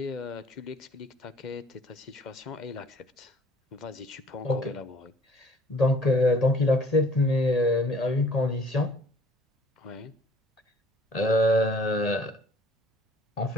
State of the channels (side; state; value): both; normal; correlation 0.56